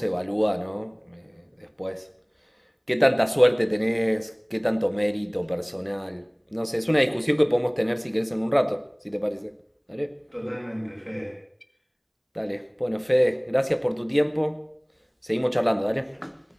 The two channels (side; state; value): both; identical; correlation 1.00